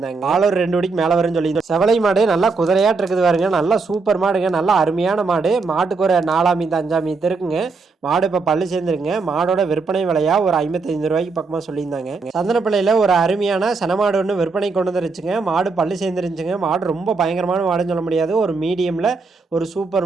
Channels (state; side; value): quieter; left; 4.3 dB